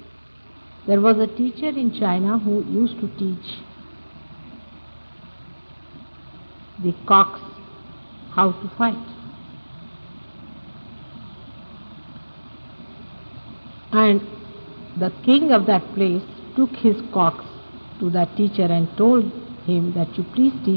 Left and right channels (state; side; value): inverted; both; correlation -1.00